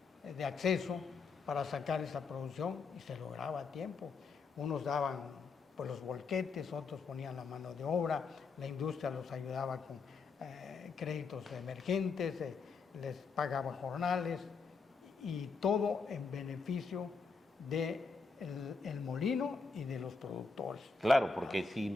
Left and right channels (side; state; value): right; quieter; 4.6 dB